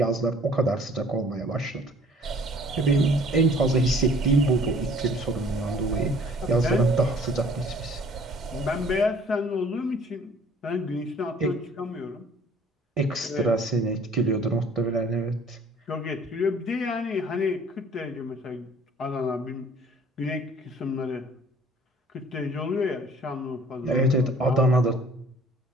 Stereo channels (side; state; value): both; normal; correlation 0.54